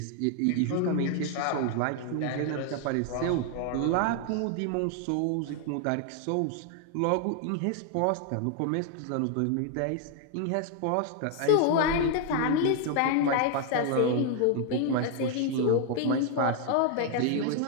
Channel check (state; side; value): different; both; correlation 0.00